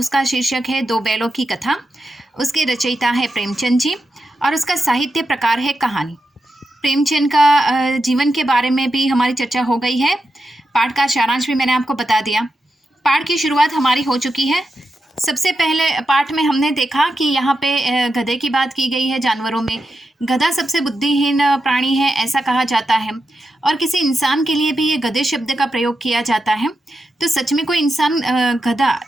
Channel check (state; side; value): normal; both; correlation 0.87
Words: शीर्षक है दो बैलों की कथा। उसके रचयिता है प्रेमचंद जी और उसका साहित्य प्रकार है कहानी। प्रेमचंद का जीवन के बारे में भी हमारी चर्चा हो गई है। पाठ का सारांश भी मैंने आपको बता दिया। पाठ की शुरुआत हमारी हो चुकी है। सबसे पहले पाठ में हमने देखा कि यहाँ पे गधे की बात की गई है। जानवरों में गधा सबसे बुद्धिहीन प्राणी है ऐसा कहा जाता है और किसी इंसान के लिए भी ये गधे शब्द का प्रयोग किया जाता है। तो सच में कोई इंसान गधा